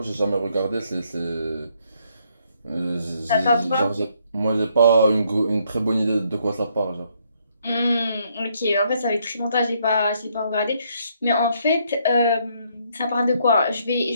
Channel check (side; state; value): both; inverted; correlation -0.71